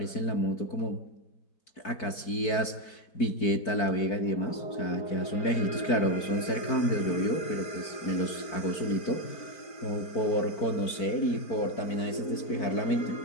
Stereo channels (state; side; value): late; right; 4.6 ms